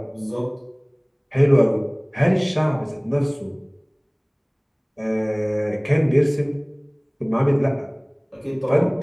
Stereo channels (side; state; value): both; identical; correlation 1.00